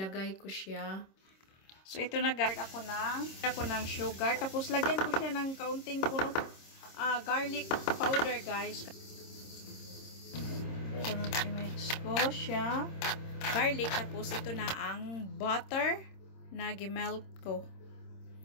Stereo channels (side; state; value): right; late; 26 ms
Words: ko siya. So, ito na guys, ako ng sugar. Tapos, lagyan ko siya ng kaunting garlic powder, guys. So, i-mix ko siya. Garlic. Tapos, ito na ang butter na gimelt ko.